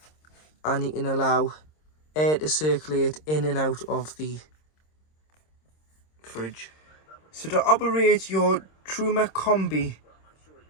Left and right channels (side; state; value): right; late; 26 ms